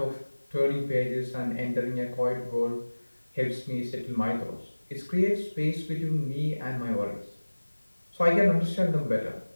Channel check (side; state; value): both; inverted; correlation -1.00